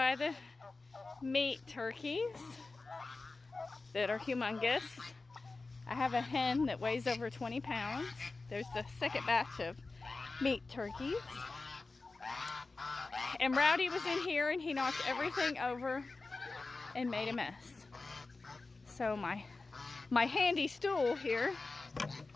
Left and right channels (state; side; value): quieter; right; 3.6 dB